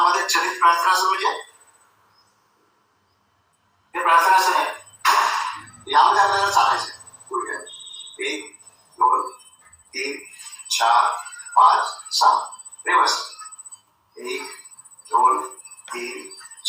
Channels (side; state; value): both; identical; correlation 1.00